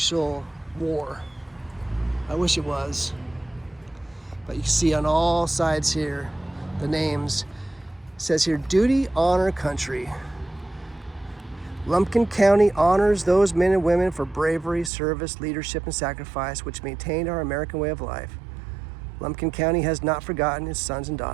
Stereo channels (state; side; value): drops out; left; at 14.9 s